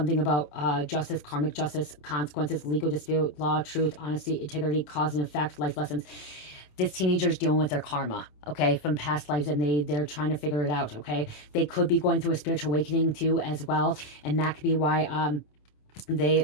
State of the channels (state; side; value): late; right; 27 ms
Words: about justice, karmic justice, consequences, legal dispute, law, truth, honesty, integrity, cause and effect, life lessons. This teenager is dealing with their karma, okay, from past lives, and they're trying to figure it out. Okay, they could be going through a spiritual awakening too as well, and that could be why